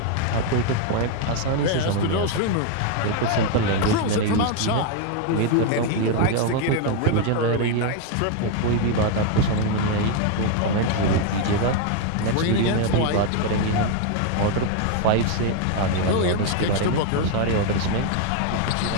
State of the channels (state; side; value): different; both; correlation 0.01